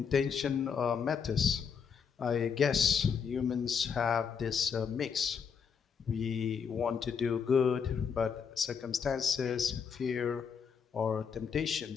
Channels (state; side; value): quieter; right; 6.6 dB